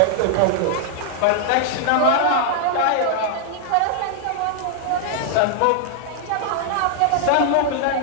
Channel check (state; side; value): different; both; correlation 0.00